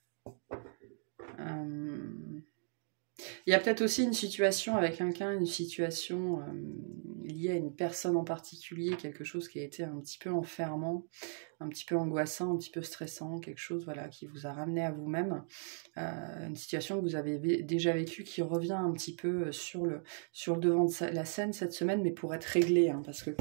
Il y a peut-être aussi une situation avec quelqu'un, une situation liée à une personne en particulier, quelque chose qui a été un petit peu enfermant, un petit peu angoissant, un petit peu stressant, quelque chose voilà, qui vous a ramené à vous-même, une situation que vous avez déjà vécue qui revient un petit peu sur le devant de la scène cette semaine, mais pour être réglé, hein, parce que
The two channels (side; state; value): left; silent; digital silence